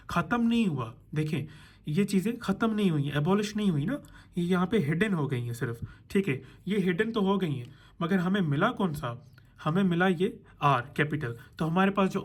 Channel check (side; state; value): both; identical; correlation 1.00